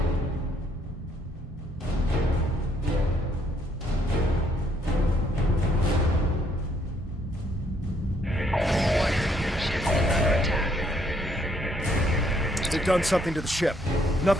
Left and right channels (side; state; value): both; normal; correlation 0.69